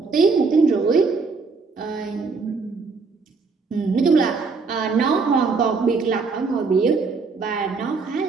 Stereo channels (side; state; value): left; quieter; 4.5 dB